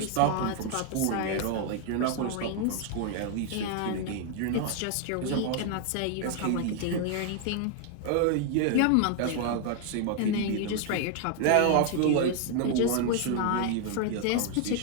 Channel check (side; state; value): both; different; correlation 0.00